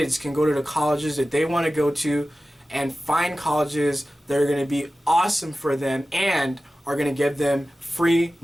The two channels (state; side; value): normal; both; correlation 0.95